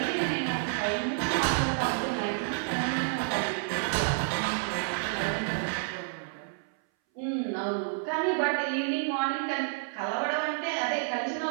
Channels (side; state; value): left; silent; 58 dB below the other